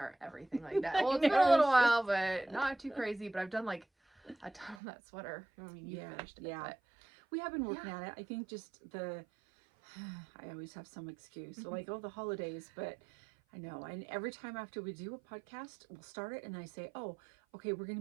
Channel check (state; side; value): drops out; left; at 4.8 s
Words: everything like that. Well, it's been a little while, but not too crazy. But I've done like a ton on that sweater. I mean, you finished it. Yeah. But We have been working at it. I think just I always have some excuse. So like, the holidays, but I know. And every time after we do a podcast, we'll start it and I say, oh, okay, we're going